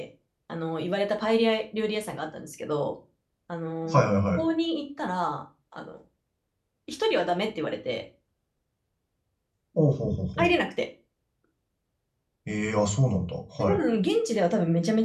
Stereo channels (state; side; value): identical; both; correlation 1.00